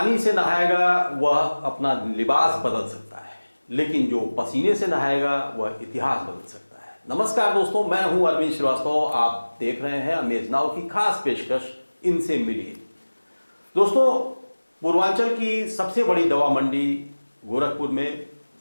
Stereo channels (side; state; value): both; inverted; correlation -1.00